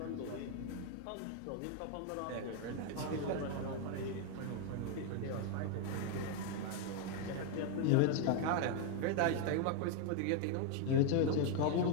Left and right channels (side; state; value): both; different; correlation 0.00